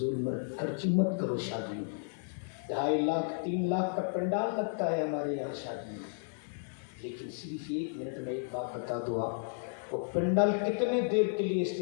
میں خرچی مت کرو شادی میں، 2.5 لاکھ 3 لاکھ کا پنڈال لگتا ہے ہمارے یہاں شادی میں، لیکن صرف 1 منٹ میں ایک بات بتا دو آپ، وہ پنڈال کتنے دیر کے لیے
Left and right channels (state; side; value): silent; right; 56 dB below the other